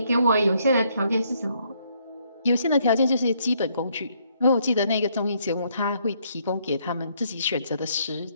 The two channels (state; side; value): inverted; both; correlation -0.70